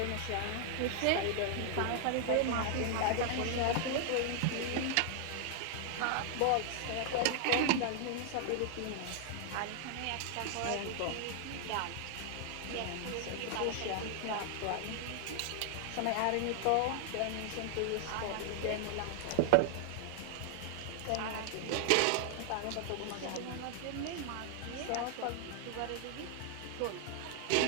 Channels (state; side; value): different; both; correlation 0.00